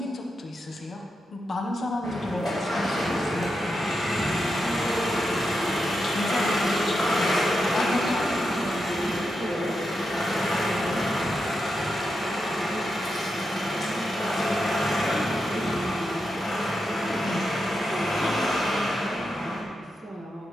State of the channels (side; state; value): both; normal; correlation 0.86